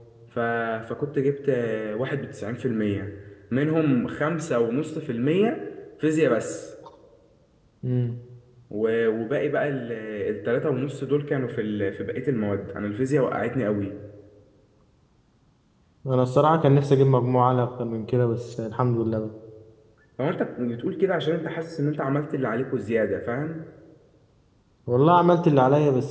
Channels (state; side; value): identical; both; correlation 1.00